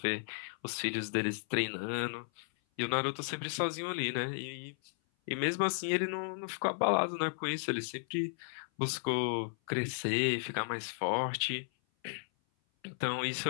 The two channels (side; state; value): right; silent; 55 dB below the other